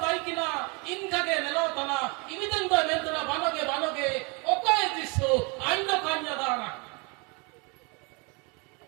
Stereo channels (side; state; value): left; quieter; 31.3 dB